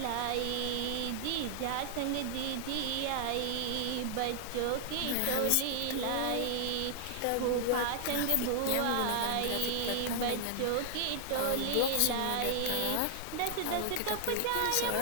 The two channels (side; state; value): both; different; correlation 0.00